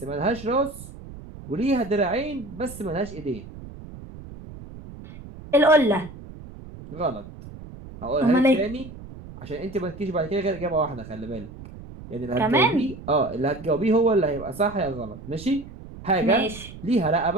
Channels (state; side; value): noise; right; rumble, 15 dB below the sound